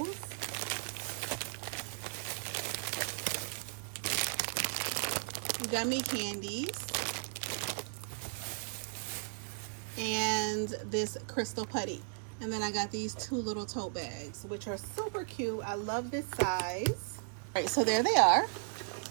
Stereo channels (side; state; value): left; silent; digital silence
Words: Gummy candies and this crystal putty. And then I got these 2 little tote bags, which are super cute. I love this size. All right, so there they are.